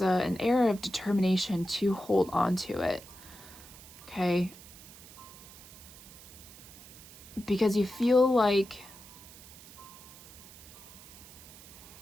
an air of determination to hold on to it, okay? Because you feel like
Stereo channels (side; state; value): right; noise; hiss, 18 dB below the sound